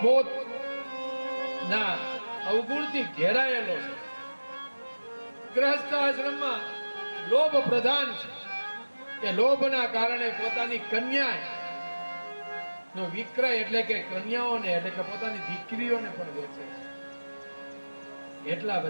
ના અવગુણથી ઘેરાયેલો છે. ગૃહસ્થાશ્રમમાં લોભ પ્રધાન છે. કે લોભના કારણે પોતાની કન્યા નો વિક્રય એટલે કે કન્યાઓને એટલે કે પોતાની દીકરીઓને પણ વેચે છે. એટલા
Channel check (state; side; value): inverted; both; correlation -1.00